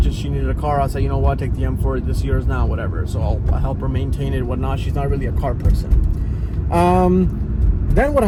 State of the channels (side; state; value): both; identical; correlation 1.00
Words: she needed a car. I said, you know what, take the M4, this year's now, whatever. So I'll help her maintain it, whatnot. She's not really a car person. Then what